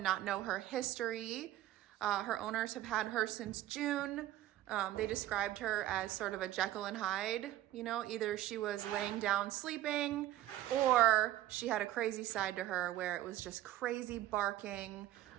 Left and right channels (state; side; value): quieter; left; 14.2 dB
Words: not know her history, her owners have had her since June. They described her as sort of a Jekyll and Hyde. Either she was laying down sleeping or she had a crazy side to her where it was just crazy barking,